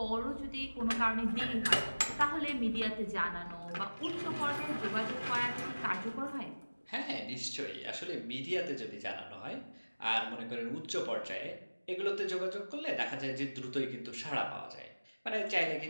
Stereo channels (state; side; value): inverted; both; correlation -1.00